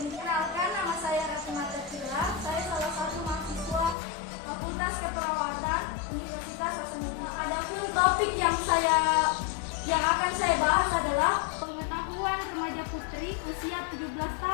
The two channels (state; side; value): drops out; right; at 4.0 s